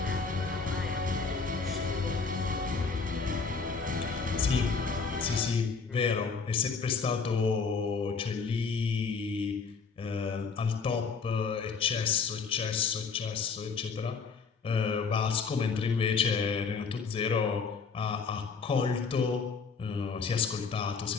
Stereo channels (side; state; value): right; quieter; 5.1 dB